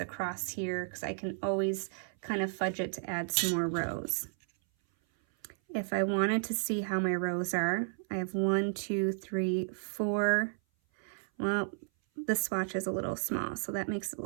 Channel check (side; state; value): left; silent; 56 dB below the other